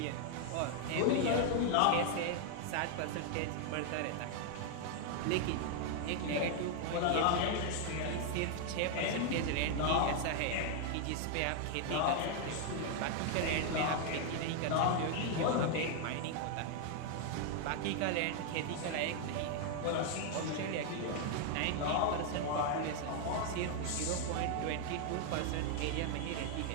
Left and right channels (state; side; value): different; both; correlation 0.00